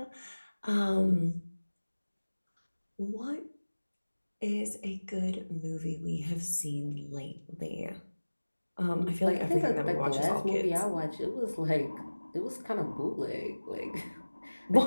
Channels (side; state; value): both; inverted; correlation -1.00